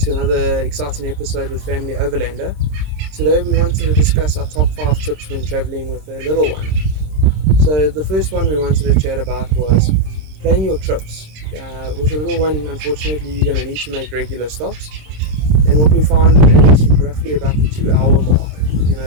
another exciting episode with Family Overlander. Today we wanted to discuss our top 5 tips when traveling with a little one. So the first one we wanted to chat about was plan your trips. With a little one, unfortunately, you're going to need to make regular stops. And what we found is roughly about the 2-hour mark.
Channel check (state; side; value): late; left; 26 ms